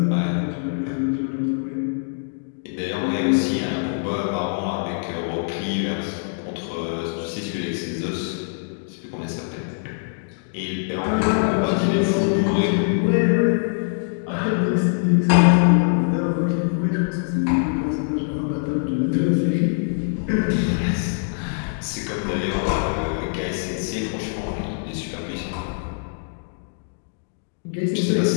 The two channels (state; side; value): silent; right; digital silence